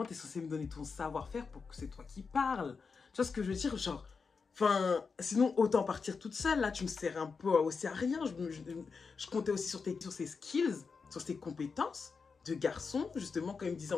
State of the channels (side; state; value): right; quieter; 5.1 dB